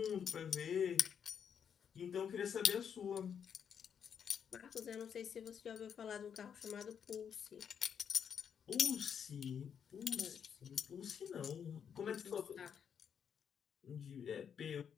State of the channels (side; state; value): right; quieter; 7.7 dB